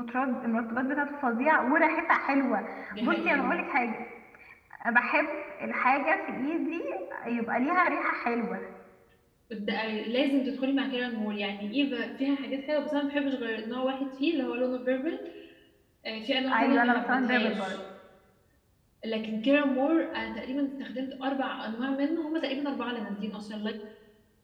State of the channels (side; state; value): both; identical; correlation 1.00